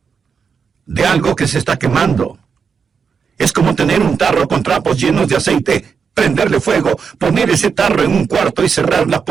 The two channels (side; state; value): left; quieter; 6.1 dB